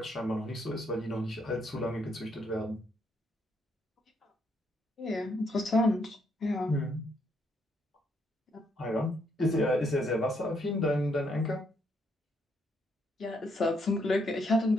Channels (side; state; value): both; normal; correlation 0.74